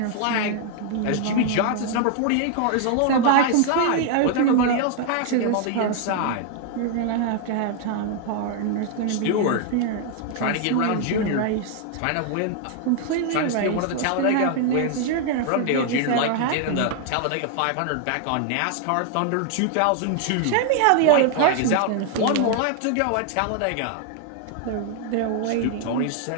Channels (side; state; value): both; different; correlation 0.00